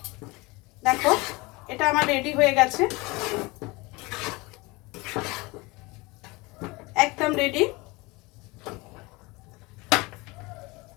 দেখো এটা আমার রেডি হয়ে গেছে, একদম রেডি।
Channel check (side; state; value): right; quieter; 24.1 dB